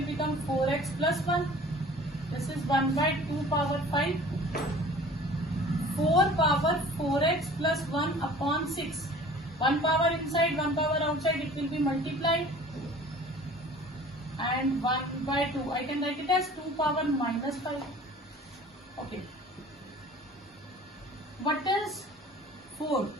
become 4x plus 1. This is 1 by 2 power 5. 4 power 4x plus 1 upon 6. 1 power inside, 1 power outside, it will be multiplied. And 1 by 2, I can write it as 2 power minus 5. Okay. What is 4?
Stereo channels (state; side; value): normal; both; correlation 0.46